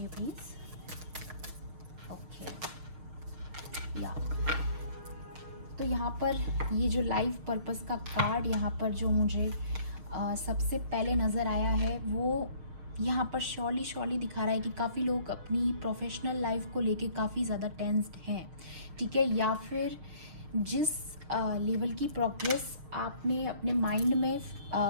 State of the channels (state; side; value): late; left; 6.5 ms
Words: प्लीज़, ओके। या तो यहाँ पर ये जो लाइफ पर्पस का कार्ड यहाँ पर जो मुझे सबसे पहले नज़र आया है, वो यहाँ पर श्योरली दिखा रहा है कि काफ़ी लोग अपनी प्रोफेशनल लाइफ को लेके काफ़ी ज़्यादा टेंस्ड हैं, ठीक है। या फिर जिस लेवल की प्रोग्रेस आपने अपने माइंड में